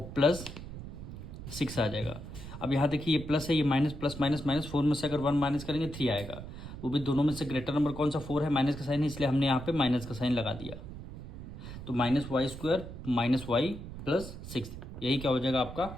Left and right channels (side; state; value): right; noise; rumble, 11 dB below the sound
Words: +6 आ जाएगा। अब यहाँ देखिए ये प्लस है, ये माइनस, प्लस माइनस माइनस, 4 में से अगर 1 माइनस करेंगे 3 आएगा, वो भी दोनों में से ग्रेटर नंबर कौन सा 4 है, माइनस का साइन है, इसलिए हमने यहाँ पे माइनस का साइन लगा दिया। तो -y स्क्वायर माइनस वाई +6, यही क्या हो जाएगा आपका